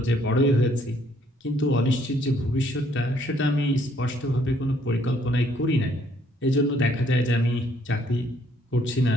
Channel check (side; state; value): both; normal; correlation 0.66